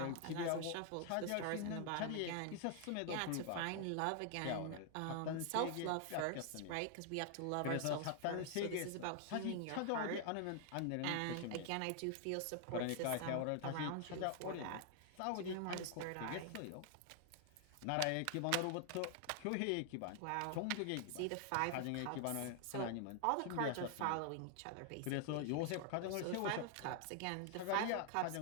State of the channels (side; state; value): both; different; correlation 0.00